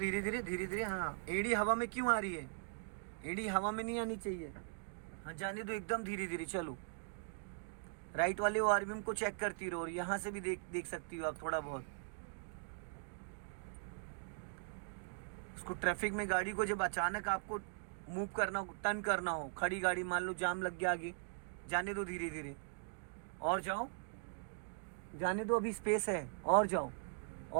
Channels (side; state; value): left; silent; digital silence